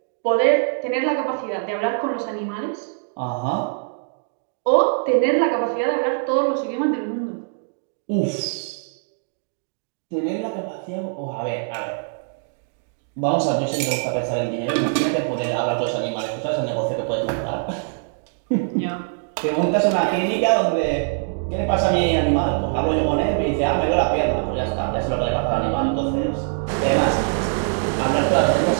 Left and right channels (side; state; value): left; silent; digital silence